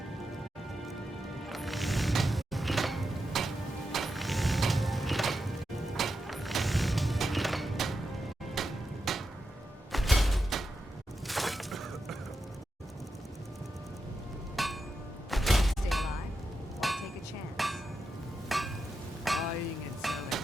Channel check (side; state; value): both; normal; correlation 0.88